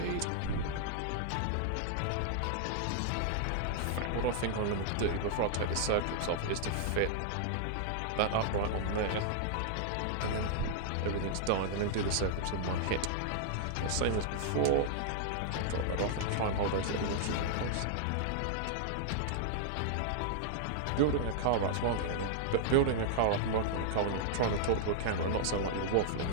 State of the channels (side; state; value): both; different; correlation -0.01